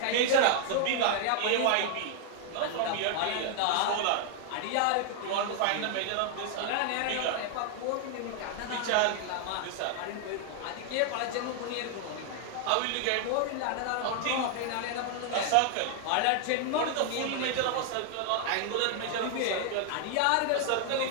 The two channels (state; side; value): different; both; correlation 0.00